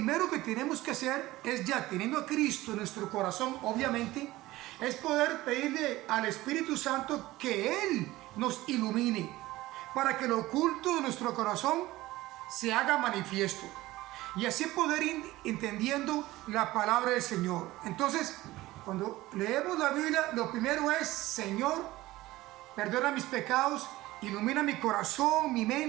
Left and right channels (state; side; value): quieter; left; 17.8 dB